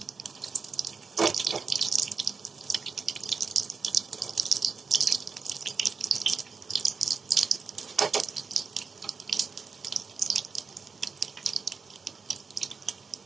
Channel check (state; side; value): quieter; left; 5.1 dB